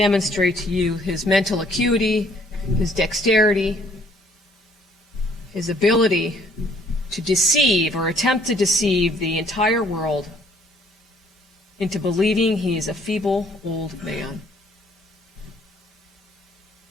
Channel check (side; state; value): both; normal; correlation 0.62